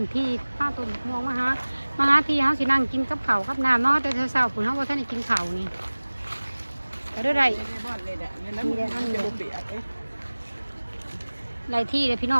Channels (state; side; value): inverted; both; correlation -1.00